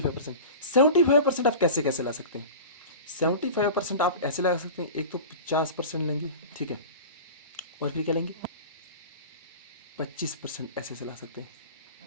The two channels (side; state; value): both; inverted; correlation -0.33